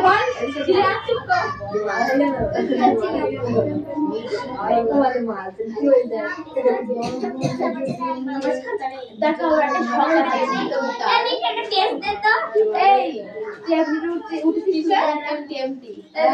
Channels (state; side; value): identical; both; correlation 1.00